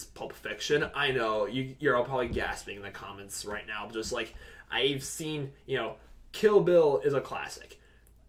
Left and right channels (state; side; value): identical; both; correlation 1.00